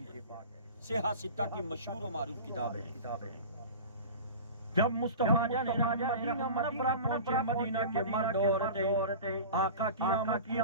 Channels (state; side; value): inverted; both; correlation -0.34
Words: پاک، صحیح ستہ کی مشہور و معروف کتاب ہے۔ جب مصطفیٰ جان مدینہ منورہ پہنچے، مدینہ کے مرد عورتیں آقا کی آمد کی